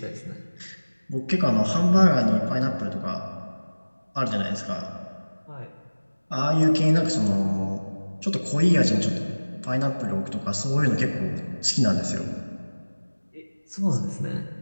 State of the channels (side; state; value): both; inverted; correlation -1.00